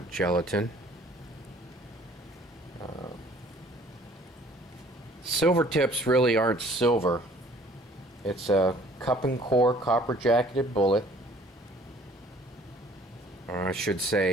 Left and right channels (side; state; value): both; normal; correlation 0.55